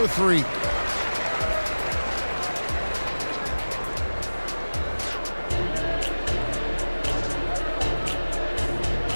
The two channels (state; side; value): inverted; both; correlation -1.00